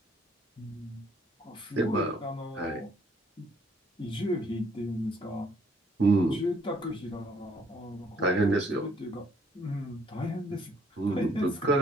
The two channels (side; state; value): both; normal; correlation 0.65